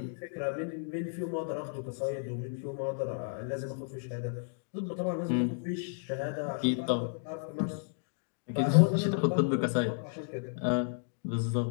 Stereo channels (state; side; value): silent; right; digital silence